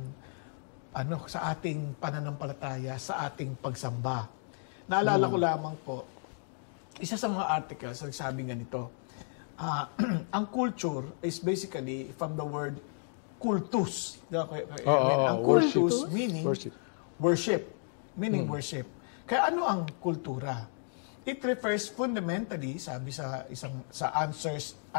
sa ating pananampalataya, sa ating pagsamba. Naalala ko lamang po, isa sa mga articles, nagsabi ganito, ang culture is basically from the word kultus. Ang kultus meaning worship. Meaning worship. Kaya ano ang kultura? It refers fundamentally, sabi sa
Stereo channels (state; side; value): silent; right; 56 dB below the other